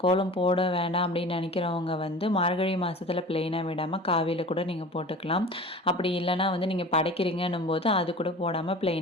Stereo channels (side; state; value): both; normal; correlation 0.39